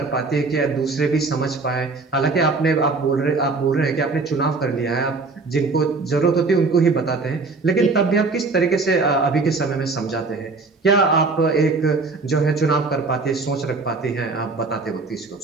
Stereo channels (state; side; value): quieter; left; 3.9 dB